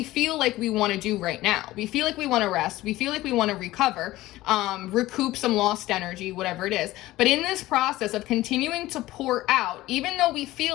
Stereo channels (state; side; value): quieter; right; 17.1 dB